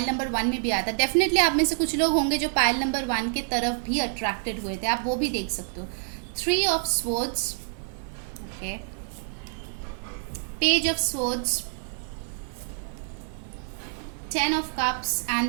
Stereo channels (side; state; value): left; silent; digital silence